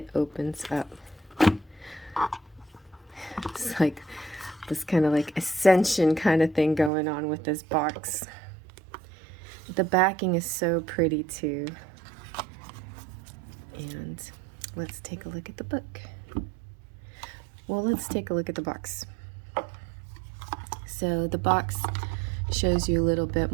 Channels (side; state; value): left; drops out; at 6.9 s